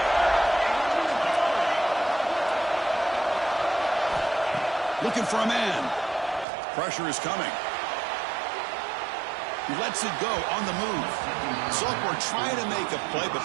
Looking for a man. Pressure is coming. He lets it go on the move. Sophomore trying to make a play, but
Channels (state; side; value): drops out; left; at 6.5 s